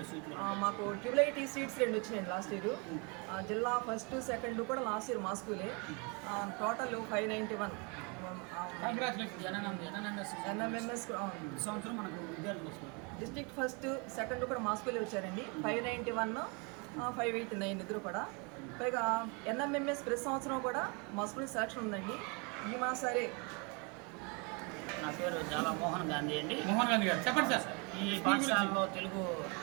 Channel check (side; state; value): left; quieter; 31.9 dB